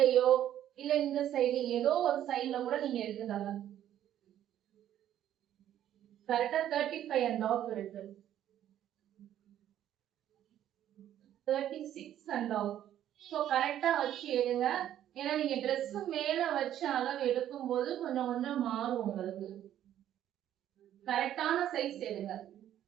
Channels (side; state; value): left; quieter; 11.4 dB